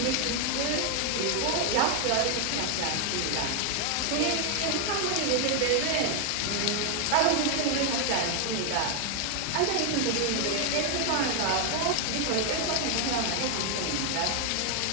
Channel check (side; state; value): both; different; correlation 0.00